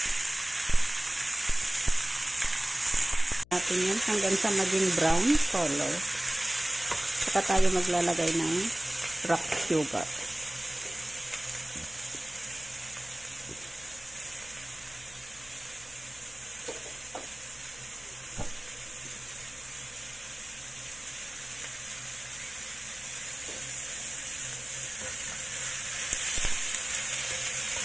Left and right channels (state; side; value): noise; left; hum, 24 dB below the sound